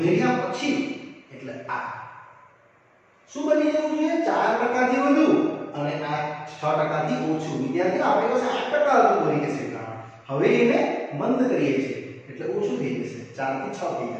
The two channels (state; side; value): identical; both; correlation 1.00